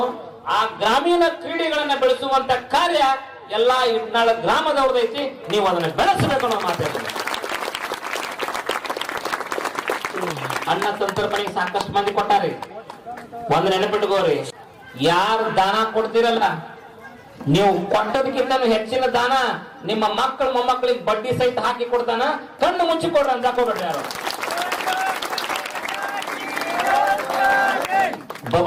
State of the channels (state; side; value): identical; both; correlation 1.00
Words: ಆ ಗ್ರಾಮೀಣ ಕ್ರೀಡೆಗಳನ್ನ ಬೆಳೆಸುವಂತ ಕಾರ್ಯ ಎಲ್ಲಾ ಇಟ್ನಾಳ ಗ್ರಾಮದವ್ರದೈತಿ. ನೀವು ಅದನ್ನ ಬೆಳೆಸಬೇಕು ಅನ್ನೋ ಮಾತಾಡ್ತಾರೆ. ಅನ್ನ ಸಂತರ್ಪಣೆಗೆ ಸಾಕಷ್ಟು ಮಂದಿ ಕೊಟ್ಟಾರಿ. ಒಂದ್ ನೆನಪಿಟ್ಕೋರಿ, ಯಾರು ದಾನ ಕೊಡ್ತಿರಲ್ಲ, ನೀವು ಕೊಟ್ಟದಕ್ಕಿಂತ ಹೆಚ್ಚಿನ ದಾನ ನಿಮ್ಮ ಮಕ್ಕಳು ಮೊಮ್ಮಕ್ಕಳಿಗೆ ಬಡ್ಡಿ ಸಹಿತ ಹಾಕಿ ಕೊಡ್ತಾನ. ಕಣ್ಣು ಮುಚ್ಚಿ ಕೊಡ್ರಿ ಅಂತ ಹಾಕೋಬೇಡ್ರಿ ಯಾರು.